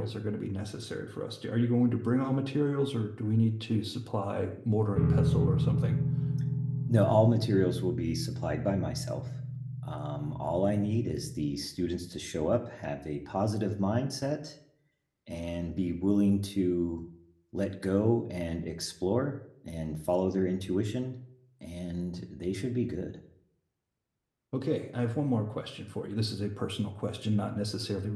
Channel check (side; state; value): both; identical; correlation 1.00